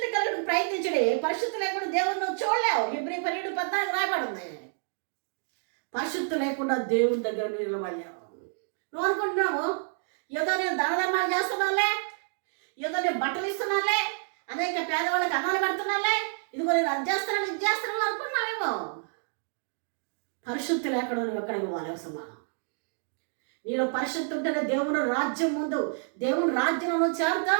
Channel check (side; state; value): left; silent; 59 dB below the other